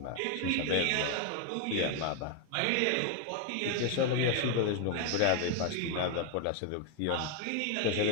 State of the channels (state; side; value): different; both; correlation 0.01